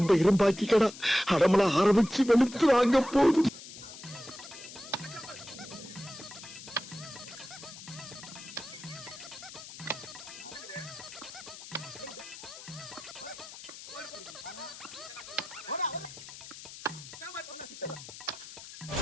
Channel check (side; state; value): left; noise; hiss, 14 dB below the sound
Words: இரும்பாக்கிக்கடா, அடமல ஆரம்பிச்சு வெளுத்து வாங்க போதும்.